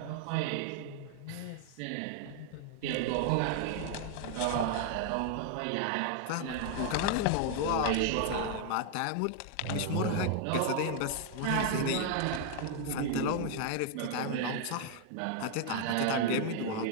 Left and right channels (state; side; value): different; both; correlation 0.00